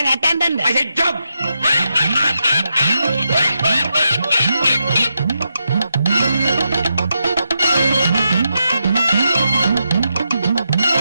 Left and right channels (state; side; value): inverted; both; correlation -0.85